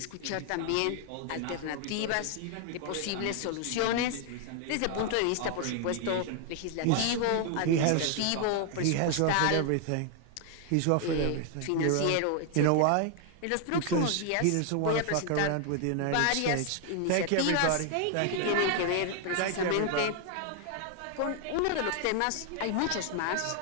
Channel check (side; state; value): both; different; correlation 0.00